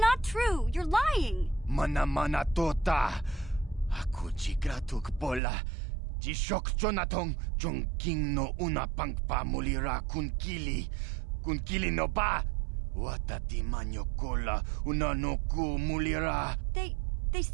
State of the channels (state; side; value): drops out; left; at 5.4 s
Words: true. You're lying. Mana tota. Aku chigratuk pola. Jishok chonatong chung king no una pangpa mulira kun kili. Kun kili no ba. Watati manyo kola una no ku mulira. They